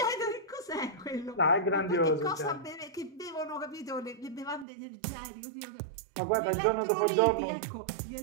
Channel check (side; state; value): left; drops out; at 4.7 s